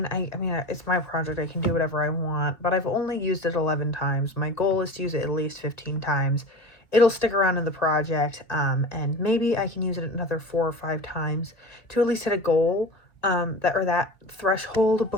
it's my project. I can do whatever I want, but I've only used it 11 times. My goal is to use it at least 15 times. It'll stick around in the project, and maybe I can use it another 4 or 5 times to at least hit a goal, that threshold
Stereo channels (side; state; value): right; late; 2.1 ms